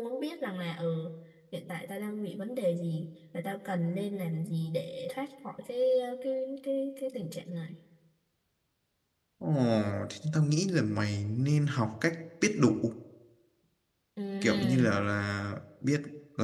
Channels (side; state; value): both; identical; correlation 1.00